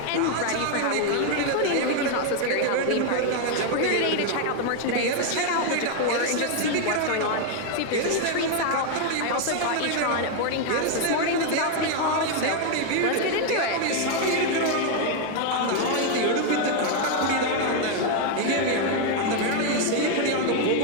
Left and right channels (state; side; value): different; both; correlation 0.01